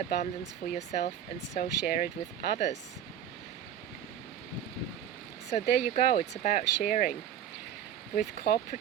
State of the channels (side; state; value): left; quieter; 9.7 dB